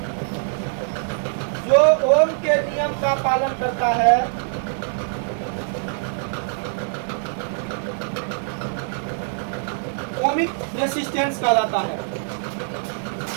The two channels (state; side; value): silent; left; digital silence